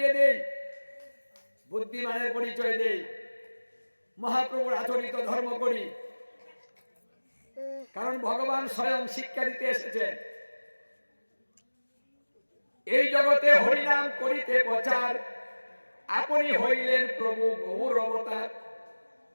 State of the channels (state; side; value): inverted; both; correlation -1.00